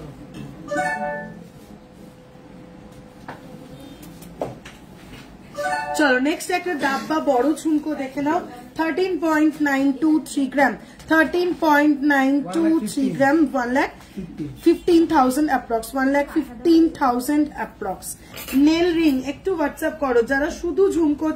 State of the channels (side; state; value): both; identical; correlation 1.00